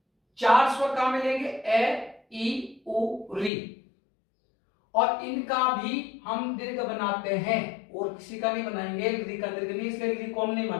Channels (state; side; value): drops out; right; at 3.5 s